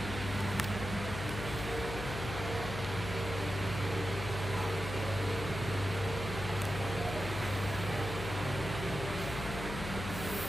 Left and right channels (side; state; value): left; noise; hum, 7 dB below the sound